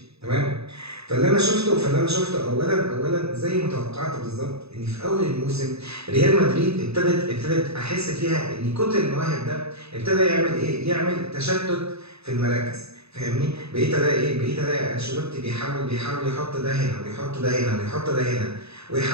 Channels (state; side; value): late; left; 0.79 ms